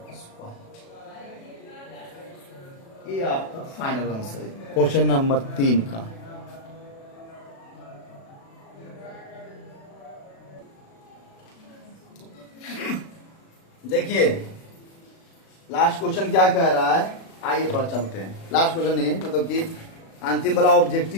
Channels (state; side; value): late; right; 36 ms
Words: स्क्वायर। ये आपका फाइनल आंसर है क्वेश्चन नंबर 3 का। देखिए लास्ट क्वेश्चन क्या कह रहा है, आइए थोड़ा चलते हैं। लास्ट क्वेश्चन नहीं मतलब कि अंतिम वाला